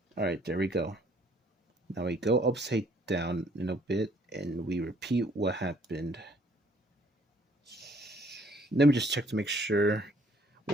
All right, there we go. Now we go upside down in a bit and we repeat what happened. Let me just check to make sure.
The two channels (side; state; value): both; normal; correlation 0.62